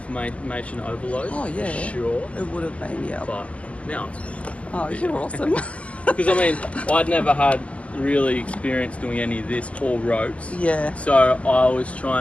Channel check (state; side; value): late; right; 0.064 ms